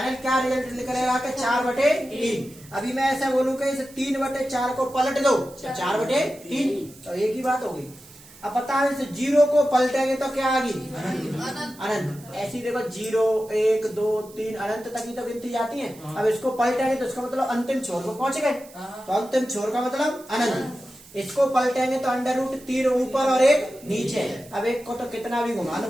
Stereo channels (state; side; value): noise; right; hiss, 22 dB below the sound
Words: क्या रिजल्ट निकलेगा कि 4/3। अभी मैं ऐसा बोलूं कि इस 3/4 को पलट दो, 4/3, तो एक ही बात होगी। अब बताओ इस 0 को पलटेंगे तो क्या आगी? अनंत। ऐसी देखो 0 1 2 3 अनंत तक ही तो गिनती जाती है। अब इसको पलटेंगे तो इसका मतलब अंतिम छोर को पहुंच गए, तो अंतिम छोर का मतलब अनंत। इसको पलटेंगे तो √3 ऊपर और 1 नीचे। अब एक को तो कितना भी घुमा लो